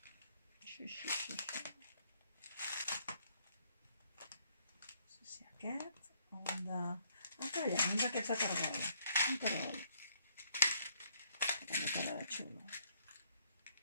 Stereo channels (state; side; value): inverted; both; correlation -0.68